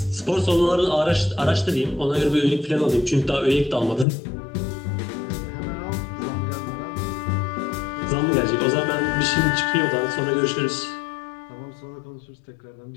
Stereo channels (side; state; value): right; drops out; at 4.0 s